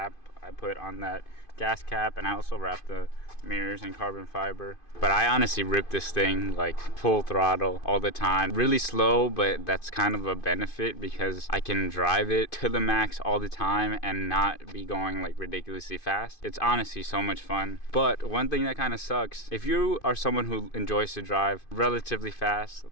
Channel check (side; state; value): right; late; 2.5 ms